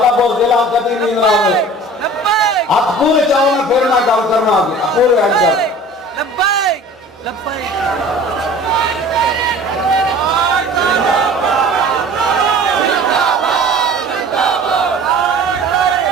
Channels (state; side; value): normal; both; correlation 0.44